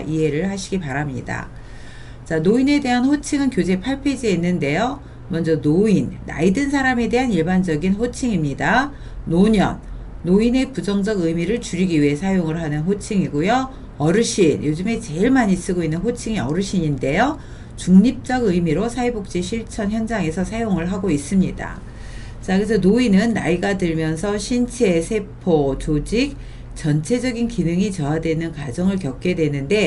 하시기 바랍니다. 자, 노인에 대한 호칭은 교재 8페이지에 있는데요. 먼저 노인, 나이 든 사람에 대한 일반적인 호칭입니다. 노년, 노인의 부정적 의미를 줄이기 위해 사용을 하는 호칭이고요. 어르신, 요즘에 제일 많이 쓰고 있는 호칭이 어르신인데요. 중립적 의미로 사회복지 실천 현장에서 사용을 하고 있습니다. 자, 그래서 노인은 나이가 들면서 신체, 세포, 조직, 전체적인 기능이 저하되는 과정을 겪게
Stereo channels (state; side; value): identical; both; correlation 1.00